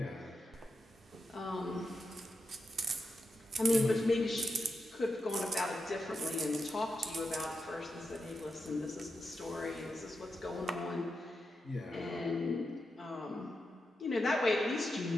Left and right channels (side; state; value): both; normal; correlation 0.87